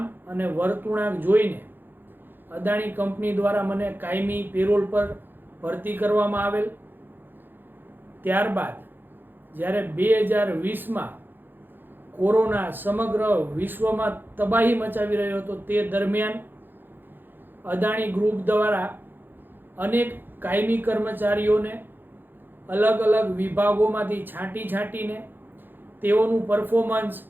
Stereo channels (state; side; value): late; left; 0.095 ms